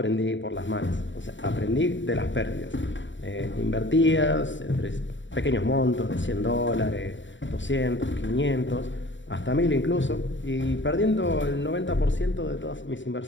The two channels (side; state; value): right; late; 0.54 ms